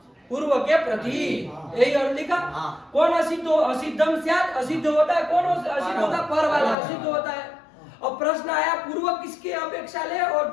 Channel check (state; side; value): drops out; right; at 6.8 s